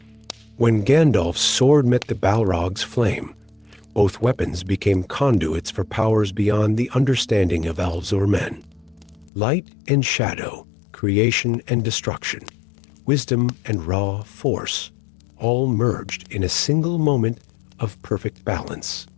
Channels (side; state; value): right; drops out; at 9.3 s